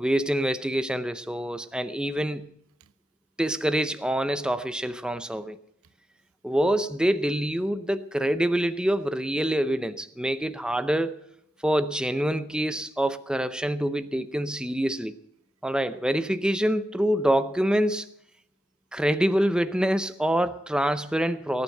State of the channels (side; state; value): both; normal; correlation 0.89